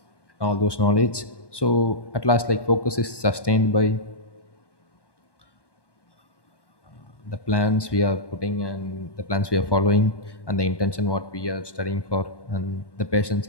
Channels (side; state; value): right; late; 1.2 ms